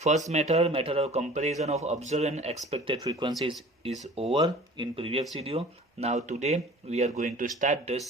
First method of comparison of observed and expected frequencies is over in previous video. Now today we are going to start the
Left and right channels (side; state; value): both; normal; correlation 0.45